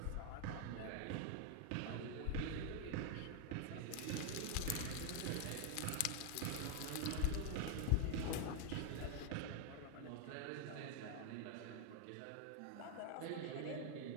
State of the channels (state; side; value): different; both; correlation 0.00